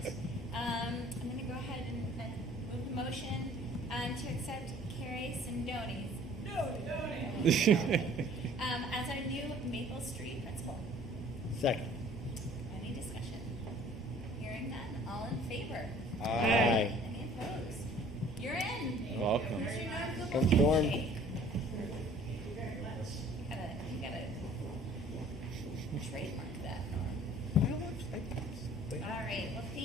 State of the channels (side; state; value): both; normal; correlation 0.53